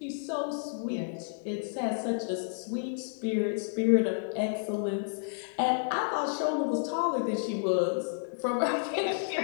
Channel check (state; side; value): silent; right; digital silence